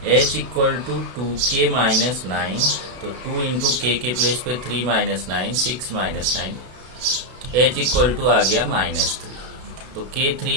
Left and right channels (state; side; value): late; left; 32 ms